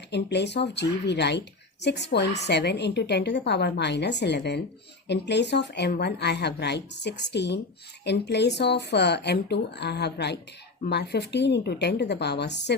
In place of G, we write 6.7 into 10 to the power minus 11. In place of m1, I have write 16. In place of m2, I have write 15 into 10 to the power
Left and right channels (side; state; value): right; quieter; 3.4 dB